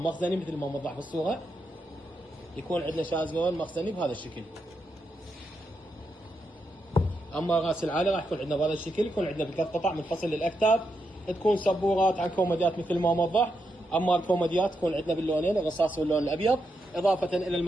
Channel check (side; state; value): both; normal; correlation 0.83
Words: مخزني مثل ما موضح بالصوره. يكون عندنا شازلون مخزني بهذا الشكل. اما راس العالي راح يكون عندنا بهذا الشكل، يكون عندنا بثلاث قطع منفصل للاكتاف، تكون سبورات عن كوميديات مثل ما موضح. اما الكوميديات تكون عندنا باللونين الرصاص واللون الابيض، اضافه الى